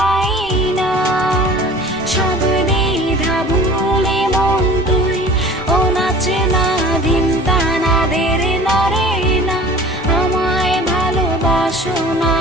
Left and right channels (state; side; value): noise; right; rumble, 20 dB below the sound